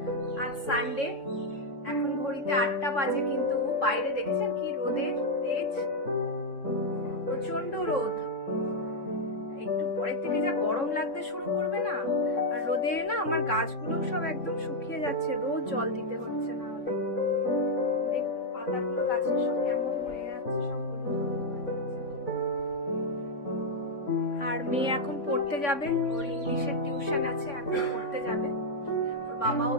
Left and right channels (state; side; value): late; right; 3.6 ms